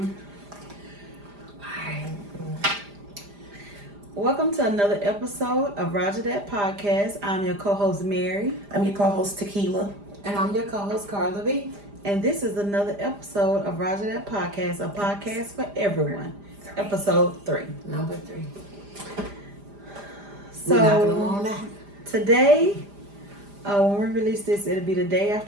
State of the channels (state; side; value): late; left; 5.0 ms